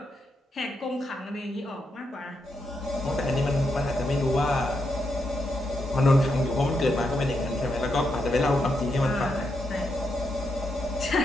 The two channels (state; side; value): normal; both; correlation 0.82